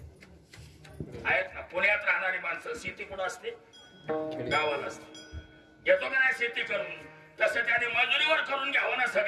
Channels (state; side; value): identical; both; correlation 1.00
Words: आहेत ना पुण्यात राहणारी माणसं शेती कुठं असते गावाला असते येतो का नाही शेती करून तसं त्याने मजुरीवर करून घ्यावं ना